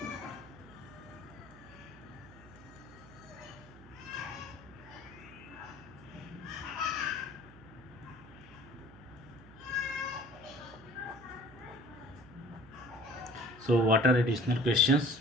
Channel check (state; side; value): noise; right; hum, 20 dB below the sound